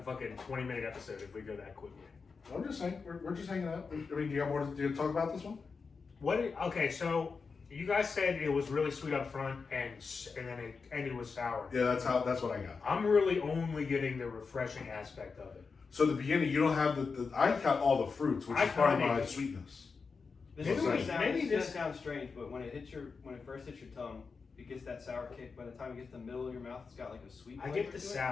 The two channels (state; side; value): quieter; right; 4.9 dB